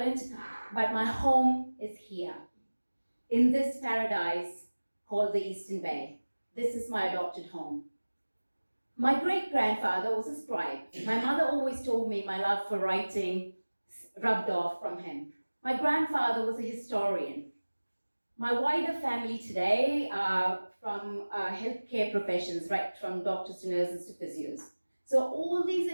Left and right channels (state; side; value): inverted; both; correlation -1.00